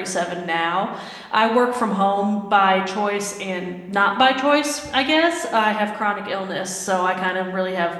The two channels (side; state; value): both; identical; correlation 1.00